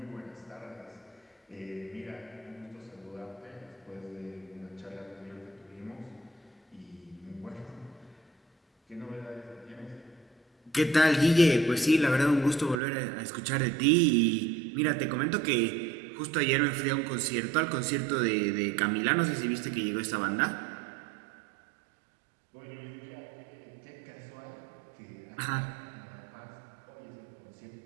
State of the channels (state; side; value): drops out; left; at 12.8 s